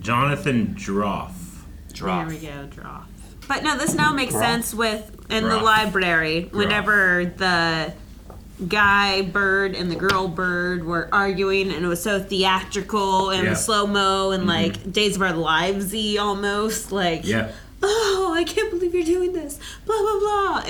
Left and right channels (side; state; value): both; identical; correlation 1.00